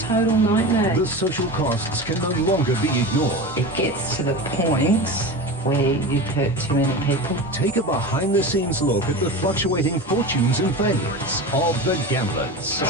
nightmare. The social costs can no longer be ignored. It gets to the point where you hurt too many people. Take a behind-the-scenes look at the fluctuating fortunes and failures of the gamblers.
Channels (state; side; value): normal; both; correlation 0.28